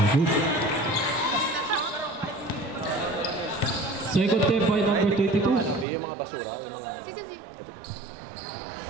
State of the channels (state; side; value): drops out; left; at 5.9 s